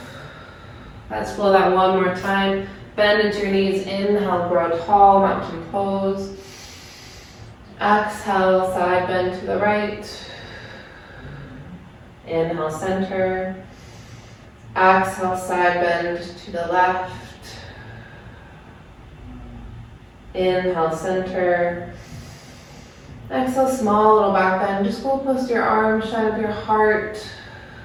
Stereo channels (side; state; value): both; identical; correlation 1.00